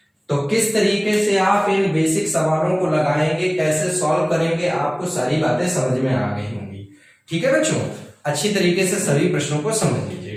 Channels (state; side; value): identical; both; correlation 1.00